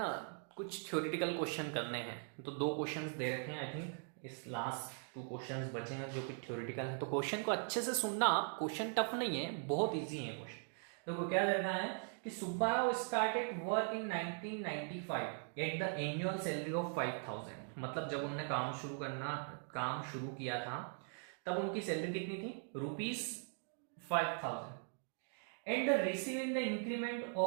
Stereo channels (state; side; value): silent; left; 51 dB below the other